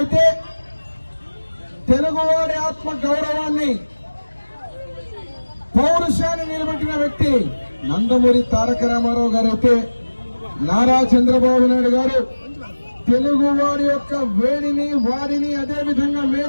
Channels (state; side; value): inverted; both; correlation -1.00